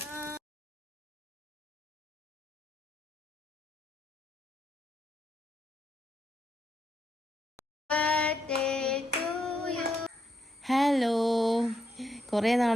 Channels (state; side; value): normal; both; correlation 0.78